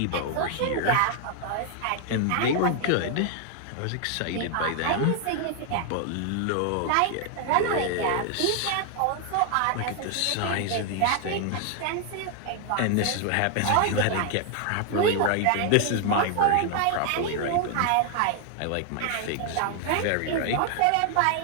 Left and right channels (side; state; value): both; different; correlation 0.00